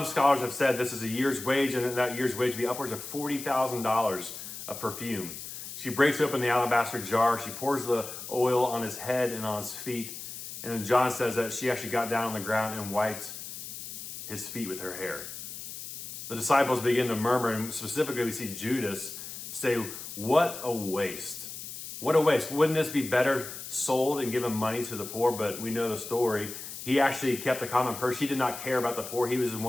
scholars have said this is a year's wage, and that year's wage would be upwards of $40,000 of perfume. She breaks open the alabaster jar, she pours the oil on his head and on his feet, and then John says that she actually got down on the ground and wiped his feet with her hair. The disciples begin to murmur, and specifically we see Judas say, "What a waste. What a waste. Wouldn't this be better sold and given money to the poor?" But we know the story. He actually kept a common purse. He did not care about the poor. He was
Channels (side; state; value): left; noise; hiss, 10 dB below the sound